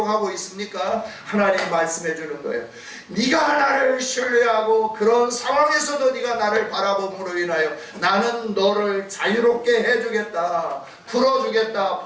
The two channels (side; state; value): both; identical; correlation 1.00